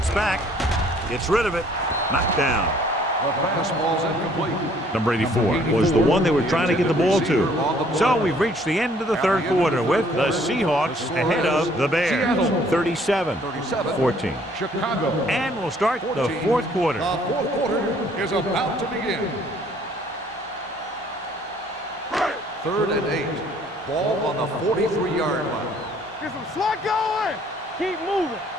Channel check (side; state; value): both; normal; correlation 0.60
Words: back. Gets rid of it. Knocked down. The pass ball's incomplete. Number 84 was the one they were trying to get the ball to. So we've reached the end of the third quarter with the Seahawks ahead of the Bears. 37-14. Chicago. And we'll start the fourth quarter. The fourth quarter is about to begin. 3rd and 8. Ball on the 43-yard line. Get some slot going. Keep moving.